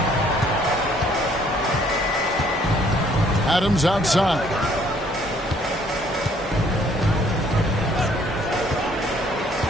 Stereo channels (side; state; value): both; normal; correlation 0.62